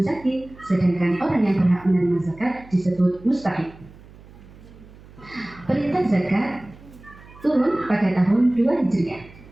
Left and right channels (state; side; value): noise; right; hum, 22 dB below the sound